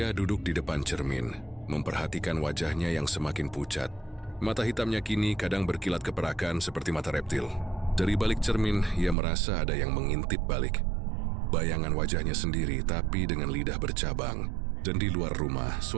duduk di depan cermin, memperhatikan wajahnya yang semakin pucat. Mata hitamnya kini kadang berkilat keperakan seperti mata reptil. Dari balik cermin, ia merasa ada yang mengintip balik. Bayangan wajahnya sendiri, tapi dengan lidah bercabang. Dan di luar rumah,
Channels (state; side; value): drops out; left; at 9.2 s